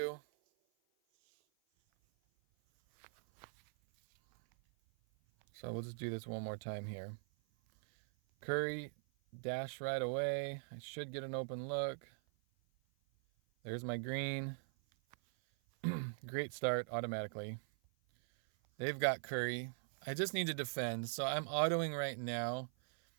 So we'll just do this one more time here. Curry, dash right away. I should get an open look. There's my green. Great start automatically. They've got Curry. I just need to defend, so I'm autoing right now.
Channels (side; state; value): left; silent; 50 dB below the other